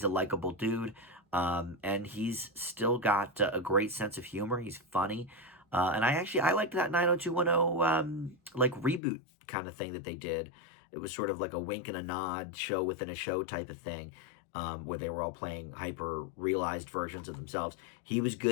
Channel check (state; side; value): drops out; right; at 9.0 s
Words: a likable dude, and he's still got a great sense of humor. He's funny. And I liked that 90210 like reboot kind of thing that they did. It was sort of like a wink and a nod show within a show type of thing, where they were all playing hyper realized versions of themselves. He was